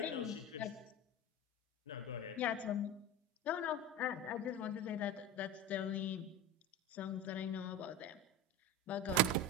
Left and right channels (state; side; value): normal; both; correlation 0.27